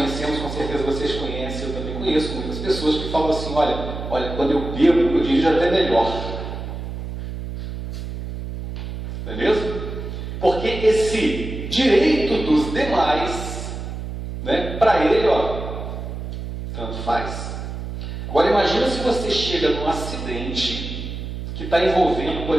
com certeza vocês conhecem, eu também conheço muitas pessoas que falam assim: olha, quando eu bebo, eu dirijo até melhor. Não é mesmo? Porque esse direito dos demais, né, para ele, tanto faz. Agora imagina se você chega num acidente que está envolvendo,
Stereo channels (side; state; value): right; noise; hum, 7 dB below the sound